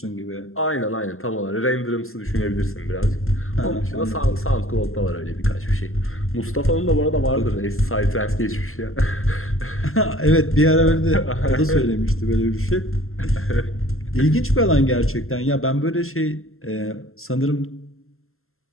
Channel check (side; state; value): right; late; 0.62 ms